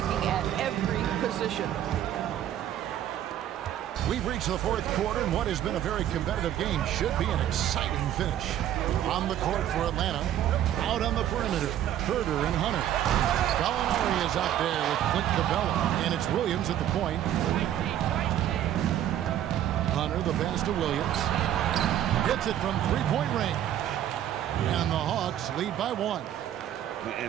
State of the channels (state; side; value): quieter; left; 11.4 dB